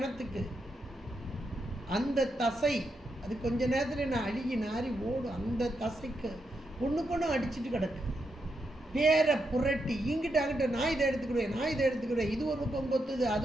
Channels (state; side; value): normal; both; correlation 0.83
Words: அந்த தசை அது கொஞ்ச நேரத்தில் நான் அழுகி நாரி ஓடும். அந்த தசைக்கு ஒன்றுக்கு அடிச்சுட்டு கிடக்கு. பேரை புரட்டி இங்கிட்ட அங்கிட்ட, நான் இதை எடுத்துக்கிடுவேன், நான் இதை எடுத்துக்கிடுவேன், இது ஒரு பக்கம் கொத்துது,